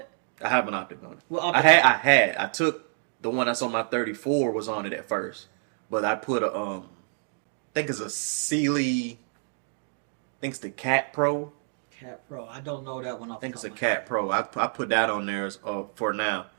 I have an optic on it. Well, I took the one that's on my 34 was on it at first, but I put a I think it's a Sealy. I think it's the Cat Pro. Cat Pro. I don't know that one. I think it's a Cat Pro. I put that on there for now,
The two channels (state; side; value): silent; left; 60 dB below the other